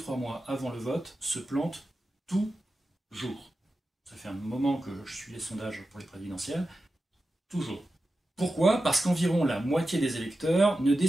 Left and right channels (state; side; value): normal; both; correlation 0.92